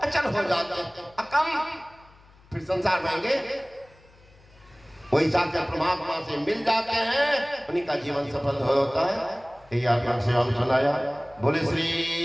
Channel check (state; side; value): noise; left; hum, 27 dB below the sound